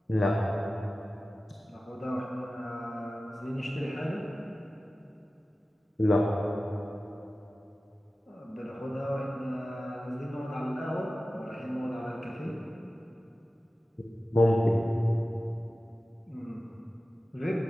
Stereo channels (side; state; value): both; normal; correlation 0.95